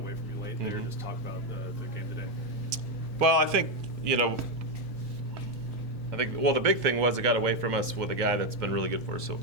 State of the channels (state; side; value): normal; both; correlation 0.06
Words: from you late there. Mhm. Just talk about the game today. Well, I think, the big thing was it got away from us with a guy that's been really good for us so